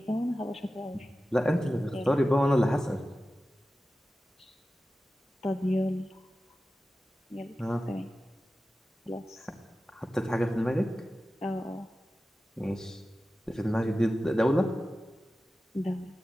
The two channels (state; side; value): normal; both; correlation 0.94